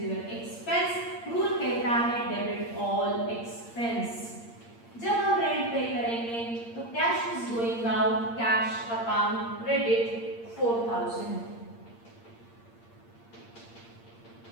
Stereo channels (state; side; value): late; right; 8.7 ms